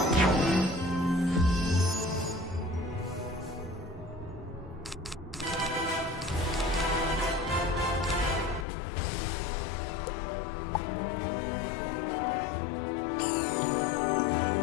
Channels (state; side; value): drops out; right; at 8.7 s